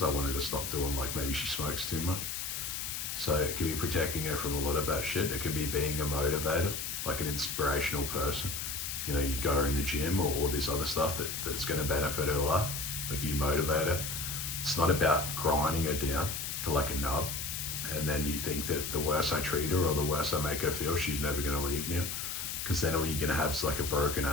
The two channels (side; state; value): left; noise; hiss, 4 dB below the sound